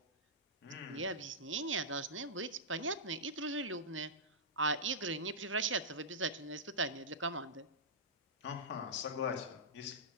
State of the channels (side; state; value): both; normal; correlation -0.14